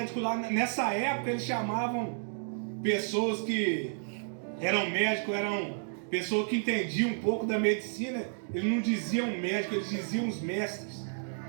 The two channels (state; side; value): silent; left; digital silence